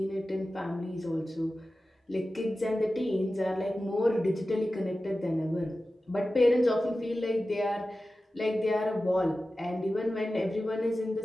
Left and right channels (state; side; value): normal; both; correlation 0.94